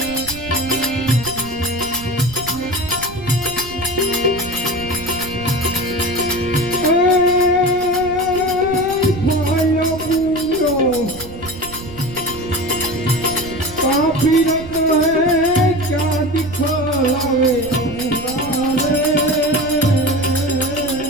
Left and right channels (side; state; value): right; noise; rumble, 15 dB below the sound